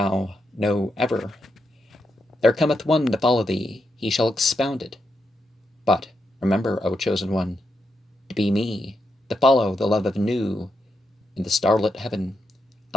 know ever. There cometh one to follow thee, he shall expound it. But remember, O chosen one, to be me, to follow the love of new in the starlit heaven.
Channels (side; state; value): both; normal; correlation 0.83